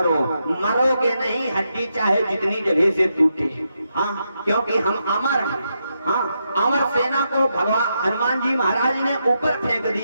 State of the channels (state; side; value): inverted; both; correlation -0.83